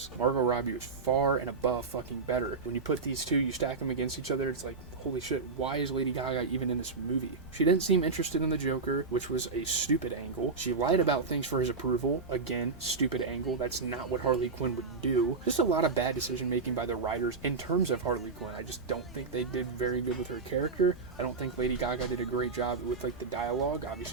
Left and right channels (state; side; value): quieter; left; 4.3 dB